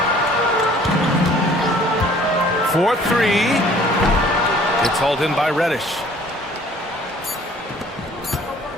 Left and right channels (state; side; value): normal; both; correlation 0.54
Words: 4-3. It's hauled in by Reddish.